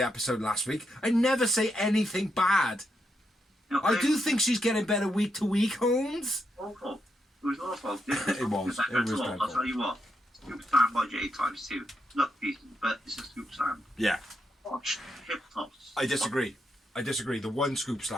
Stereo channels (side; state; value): both; normal; correlation 0.82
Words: episode last week. I never say anything bad. no, I do think she's getting better week to week, Holmes. Awful. It was awful. It was dreadful. I'll tell you what. Scoop slam by Jade times 2. Look decent, but it's a scoop slam. Yeah. Watch hip toss. I disagree. The one scoop